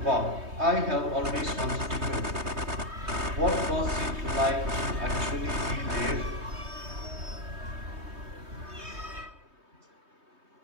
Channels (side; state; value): left; late; 3.2 ms